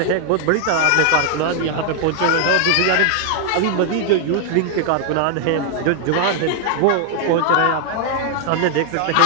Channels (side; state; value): both; different; correlation 0.00